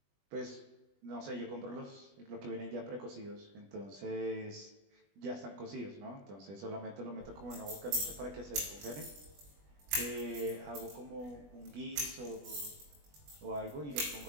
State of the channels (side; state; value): left; late; 20 ms